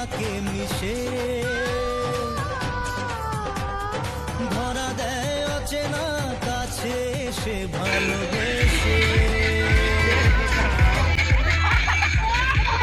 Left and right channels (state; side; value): identical; both; correlation 1.00